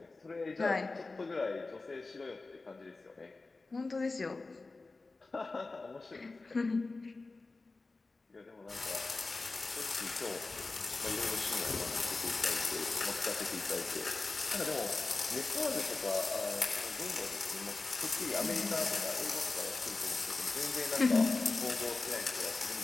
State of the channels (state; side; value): quieter; right; 3.5 dB